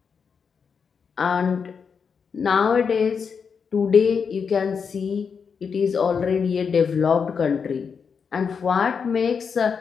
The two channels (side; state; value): right; quieter; 6.1 dB